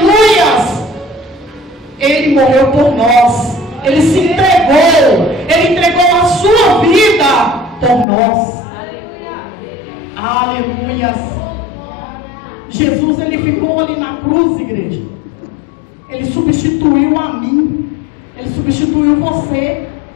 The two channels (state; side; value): drops out; right; at 8.1 s